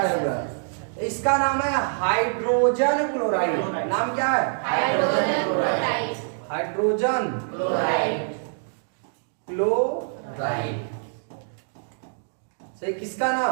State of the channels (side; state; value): left; silent; digital silence